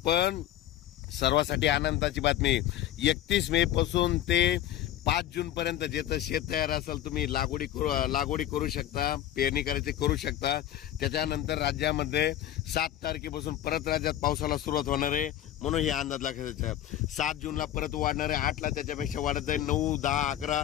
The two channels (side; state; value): right; quieter; 12.3 dB